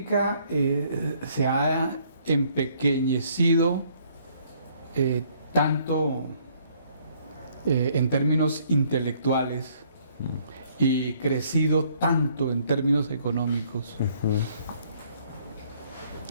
se ha empequeñecido tanto en términos intelectuales y crecido tanto en términos económicos,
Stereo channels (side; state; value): both; inverted; correlation -0.64